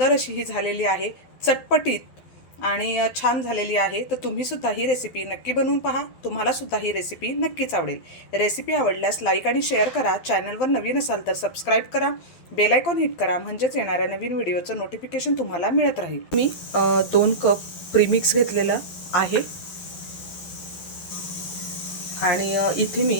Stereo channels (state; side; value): late; right; 12 ms